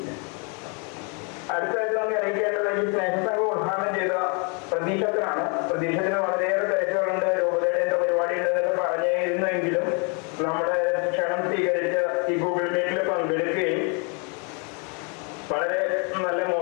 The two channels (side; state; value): right; quieter; 35.6 dB